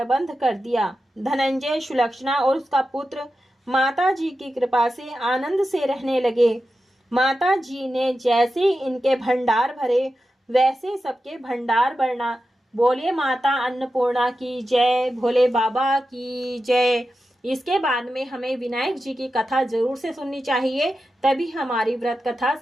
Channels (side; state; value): both; normal; correlation 0.91